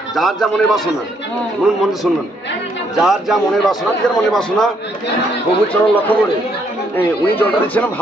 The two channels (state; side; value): normal; both; correlation 0.71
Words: যার যা মনের বাসনা, শুনুন মনে শুনবেন, যার যা মনের বাসনা, যার মনের বাসনা প্রভুর চরণ লক্ষ্য করে উনি জলটা দিচ্ছেন,